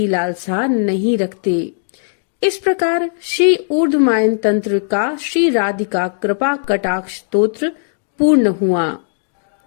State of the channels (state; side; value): silent; right; digital silence